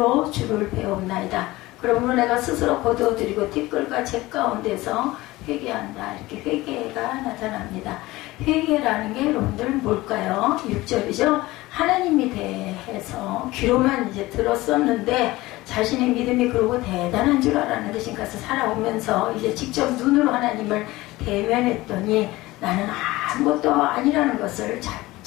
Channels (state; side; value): quieter; right; 19.1 dB